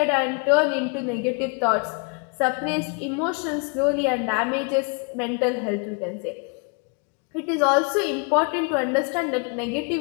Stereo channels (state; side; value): quieter; right; 36.3 dB